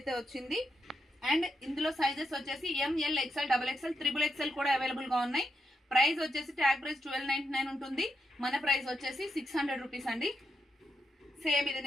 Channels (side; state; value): both; normal; correlation 0.83